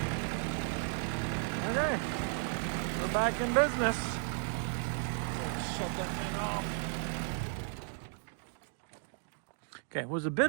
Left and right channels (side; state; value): left; silent; 55 dB below the other